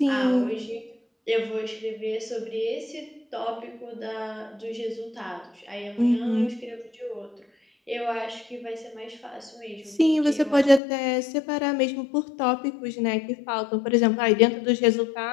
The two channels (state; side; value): drops out; right; at 10.8 s